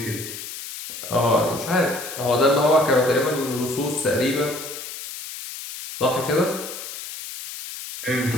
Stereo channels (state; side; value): noise; left; hiss, 10 dB below the sound